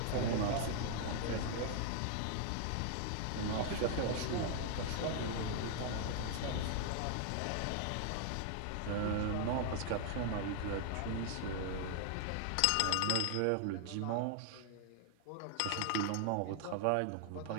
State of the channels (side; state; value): both; different; correlation 0.00